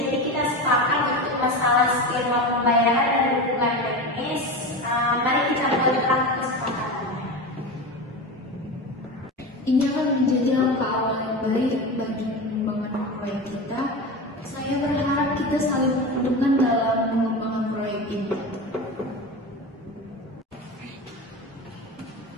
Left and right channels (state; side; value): normal; both; correlation 0.25